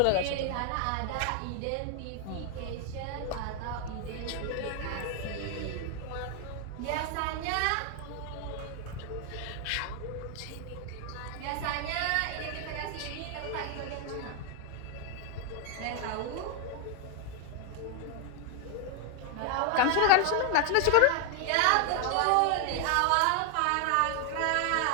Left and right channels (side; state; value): both; different; correlation 0.00